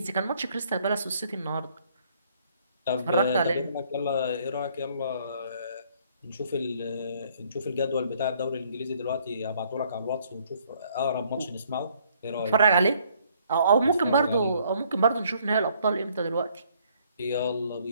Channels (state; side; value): inverted; both; correlation -0.64